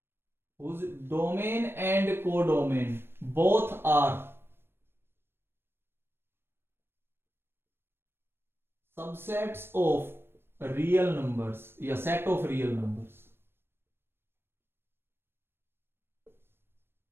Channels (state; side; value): late; left; 0.11 ms